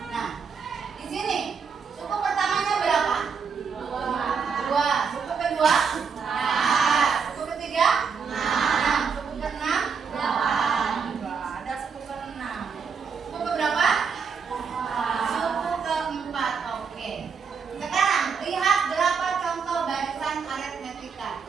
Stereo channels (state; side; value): quieter; left; 5.9 dB